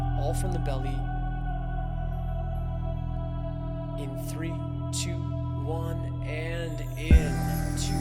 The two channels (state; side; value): identical; both; correlation 1.00